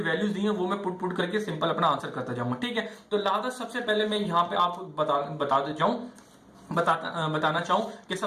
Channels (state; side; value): identical; both; correlation 1.00